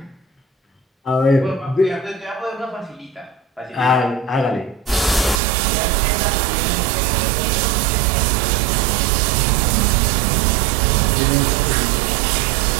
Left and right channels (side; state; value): left; drops out; at 5.4 s